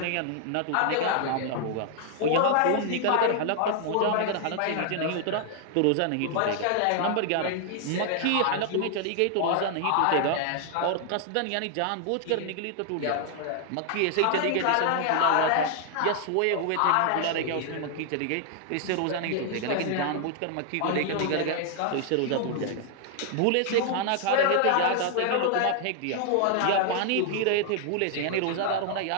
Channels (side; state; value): both; different; correlation 0.00